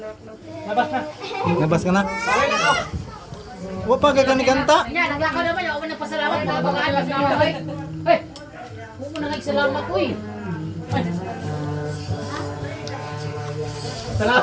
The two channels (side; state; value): both; identical; correlation 1.00